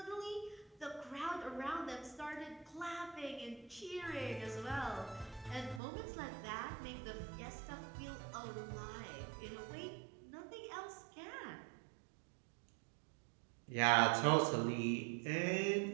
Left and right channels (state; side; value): drops out; left; at 5.8 s